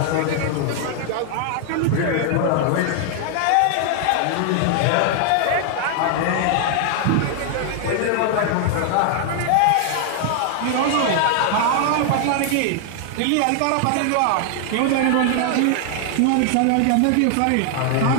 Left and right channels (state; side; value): different; both; correlation 0.00